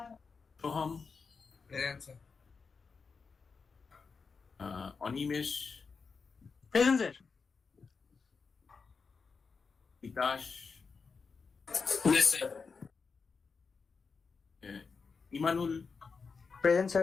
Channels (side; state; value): right; quieter; 5.0 dB